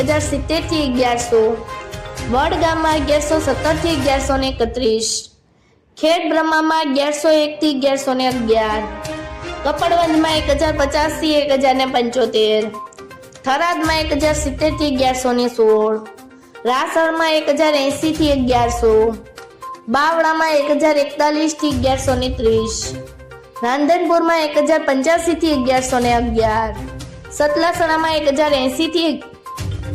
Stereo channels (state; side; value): identical; both; correlation 1.00